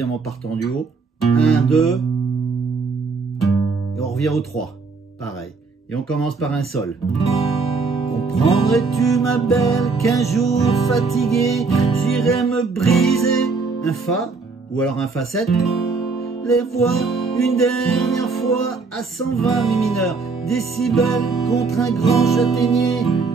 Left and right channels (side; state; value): left; quieter; 4.4 dB